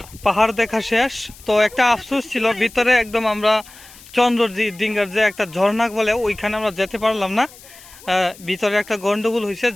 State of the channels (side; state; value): left; noise; hiss, 21 dB below the sound